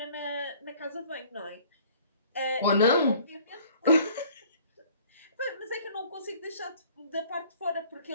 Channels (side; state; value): both; inverted; correlation -0.53